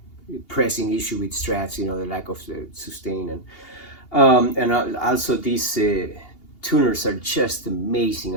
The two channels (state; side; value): late; right; 2.8 ms